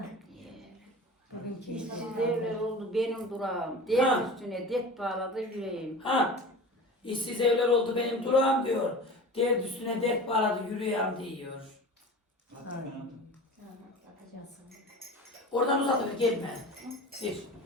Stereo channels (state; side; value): normal; both; correlation 0.35